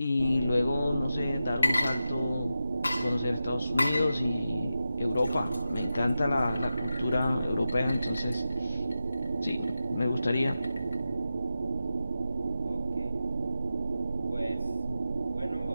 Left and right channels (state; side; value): inverted; both; correlation -0.91